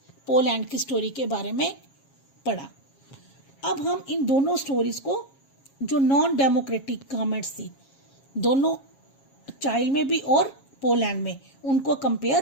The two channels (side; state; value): right; late; 7.3 ms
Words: पोलैंड की स्टोरी के बारे में पढ़ा। अब हम इन दोनों स्टोरीज को, जो नॉन डेमोक्रेटिक गवर्नमेंट्स थी दोनों, चाइल्ड में भी और पोलैंड में, उनको